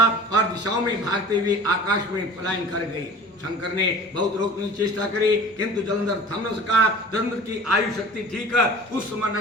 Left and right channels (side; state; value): both; normal; correlation 0.41